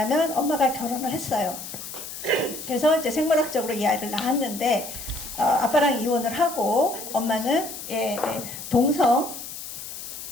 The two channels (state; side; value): noise; left; hiss, 10 dB below the sound